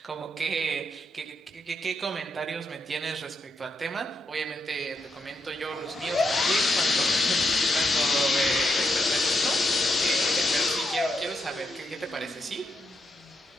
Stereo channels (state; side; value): normal; both; correlation 0.81